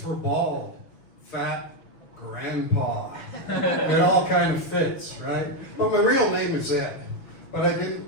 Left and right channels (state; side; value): late; right; 6.5 ms